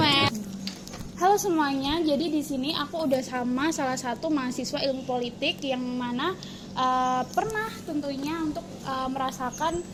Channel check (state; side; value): identical; both; correlation 1.00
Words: Halo semuanya, jadi di sini aku udah sama salah satu mahasiswa ilmu politik yang mana pernah tentunya untuk merasakan